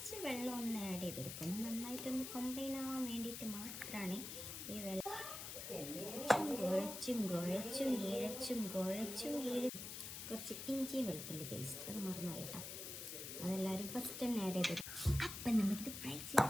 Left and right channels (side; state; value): left; noise; hiss, 7 dB below the sound